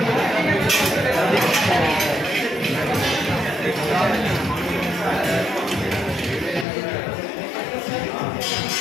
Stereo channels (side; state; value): right; drops out; at 6.7 s